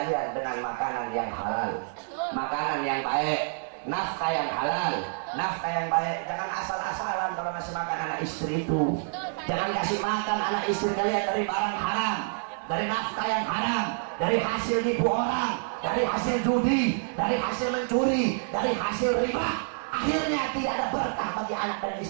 dengan makanan yang halal, makanan yang baik, nafkah yang halal, nafkah yang baik. Jangan asal-asalan kalau ngasih makan anak istri itu. Jangan kasih makan anak istri kalian dari barang haram, dari nafkah yang haram, dari hasil nipu orang, dari hasil judi, dari hasil mencuri, dari hasil riba. Akhirnya tidak ada berkah bagi anak dan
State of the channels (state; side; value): silent; left; 59 dB below the other